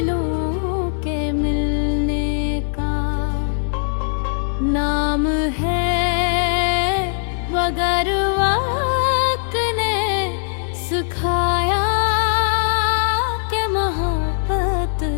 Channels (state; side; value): silent; right; 66 dB below the other